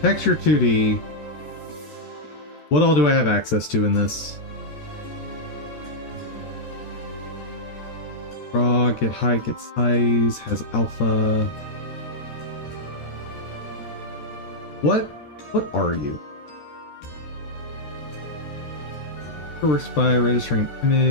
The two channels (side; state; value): right; late; 14 ms